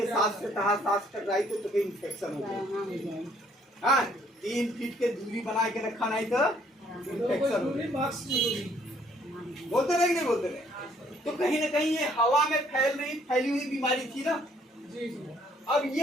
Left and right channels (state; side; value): normal; both; correlation 0.64